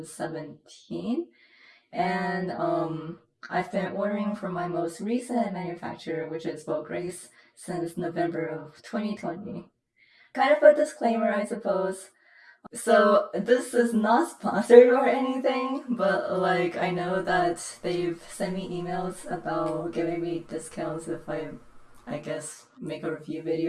And I've been ordering from my most recent manufacturer, which is Vograce, since November of 2020. Kind of a disclaimer, I suppose. So this is not sponsored or anything, but like I know that they've sent me emails about giving me discounts if I guess, make a review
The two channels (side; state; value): both; identical; correlation 1.00